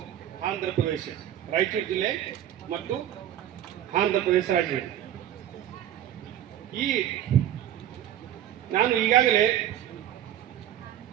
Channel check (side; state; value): left; quieter; 11.4 dB